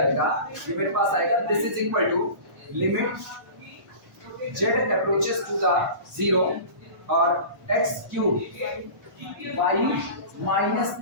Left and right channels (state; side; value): late; left; 1.1 ms